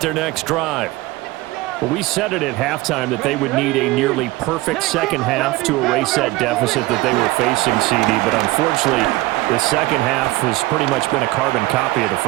next drive. Well, we said it at halftime that they would need a nearly perfect second half to erase that deficit that they were facing, CD. But unfortunately, the second half has pretty much been a carbon copy of the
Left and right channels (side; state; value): left; quieter; 19.5 dB